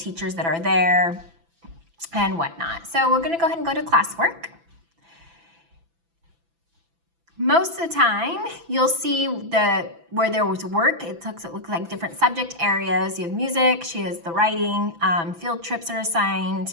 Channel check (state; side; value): late; left; 6.0 ms